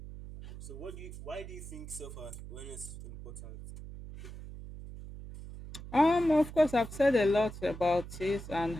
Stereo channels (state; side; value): noise; right; hum, 12 dB below the sound